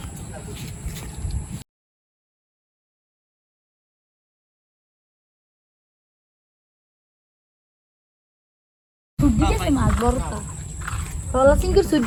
মাছ বড়টা রলা সিংকের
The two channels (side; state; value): both; identical; correlation 1.00